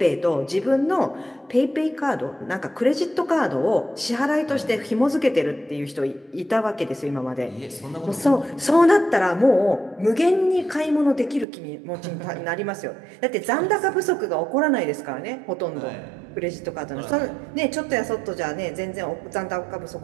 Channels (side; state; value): left; drops out; at 11.5 s